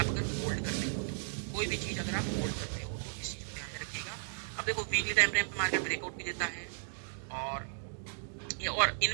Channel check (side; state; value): left; silent; digital silence